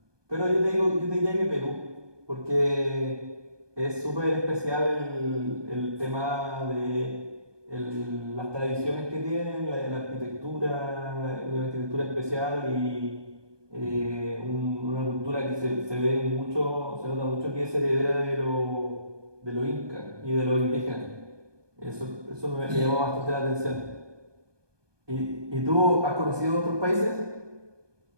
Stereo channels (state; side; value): late; left; 1.2 ms